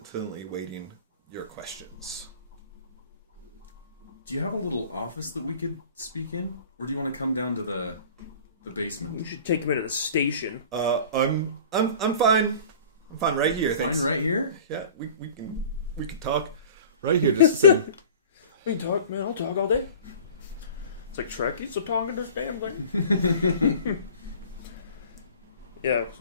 waiting your questions. Do you have a little office that we could speak in, or do you want to come down to the basement? We should take him into the station. I'm fine. I'm fine right here. Fine thanks. right here? Yeah, we can talk right here. Just sit. We can talk, man. I'll talk all day. It's like Shrek. He's talking this damn thing. Yeah,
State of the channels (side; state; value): both; inverted; correlation -0.43